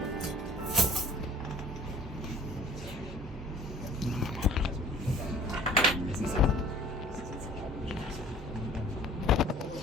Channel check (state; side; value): normal; both; correlation 0.50